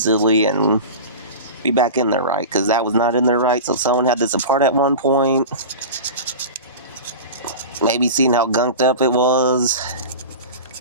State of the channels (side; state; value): both; inverted; correlation -0.31